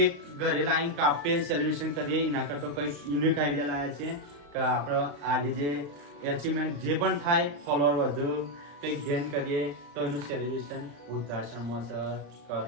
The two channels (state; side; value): late; left; 35 ms